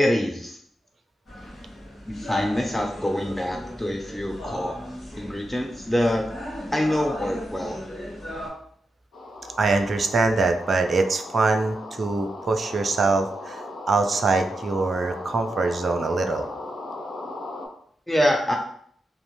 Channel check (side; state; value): both; normal; correlation 0.87